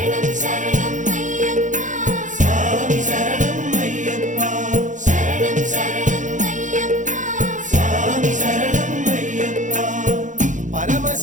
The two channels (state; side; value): late; left; 0.36 ms